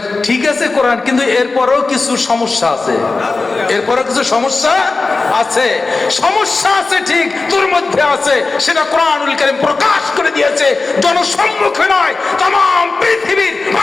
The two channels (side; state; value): right; quieter; 3.8 dB